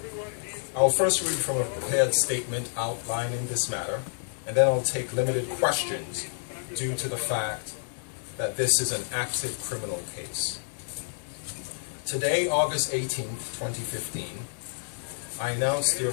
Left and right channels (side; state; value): right; silent; 59 dB below the other